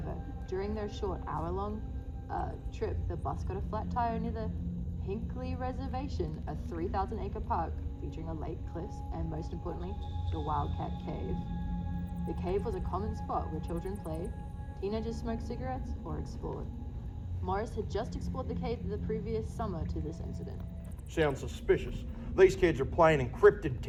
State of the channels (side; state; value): both; identical; correlation 1.00